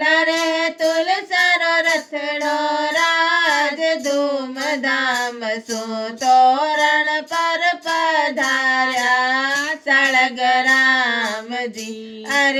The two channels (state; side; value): identical; both; correlation 1.00